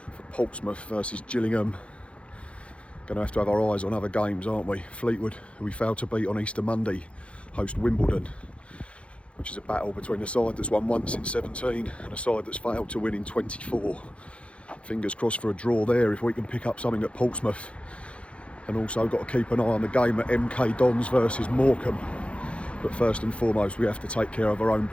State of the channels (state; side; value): late; right; 0.061 ms